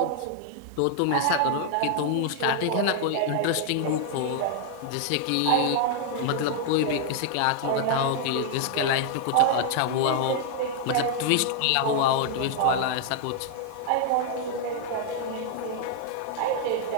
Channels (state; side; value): different; both; correlation 0.00